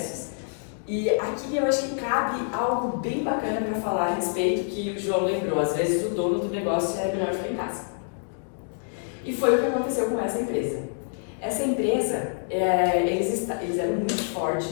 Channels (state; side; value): silent; right; digital silence